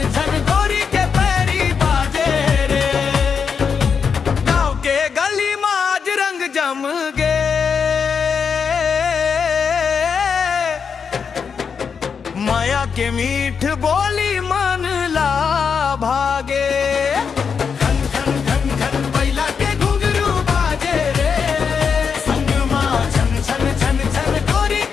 छन गोरी के पैरी बाजे रे। गाँव के गली में आज रंग जम गे, माया के मीठ बोली मन ला भागे, खन खन खन खन बैला के घुंघरू बाजे रे, संग माँ छन छन छन छन गोरी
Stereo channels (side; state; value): right; quieter; 6.2 dB